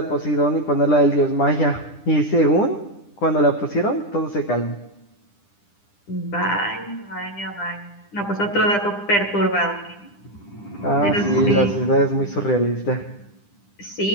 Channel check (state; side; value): late; right; 10 ms